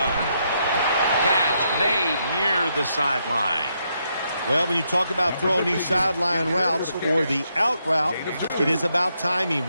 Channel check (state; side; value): inverted; both; correlation -0.78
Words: Catch made near the sideline. Well, when you talk about throwing these sideline routes or the out route, it is about timing.